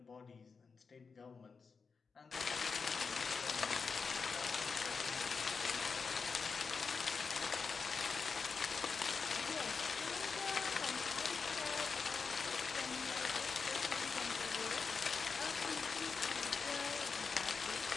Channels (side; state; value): right; quieter; 5.1 dB